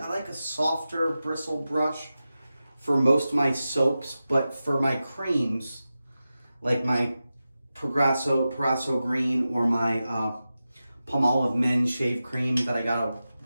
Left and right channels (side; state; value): both; inverted; correlation -0.93